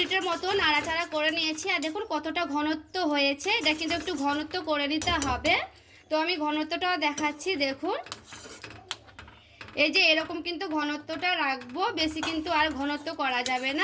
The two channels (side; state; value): both; identical; correlation 1.00